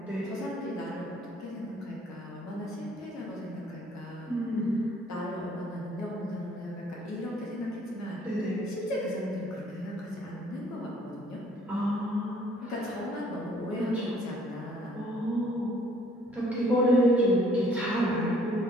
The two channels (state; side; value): normal; both; correlation 0.60